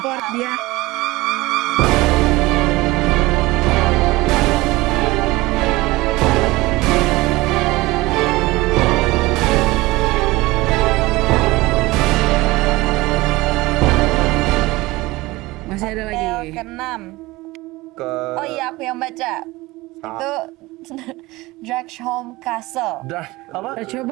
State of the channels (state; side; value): quieter; left; 20.5 dB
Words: dia. Masih ada lagi. Hotel ke-6. Oh iya, aku yang baca. Itu Dragsholm Castle. Apa?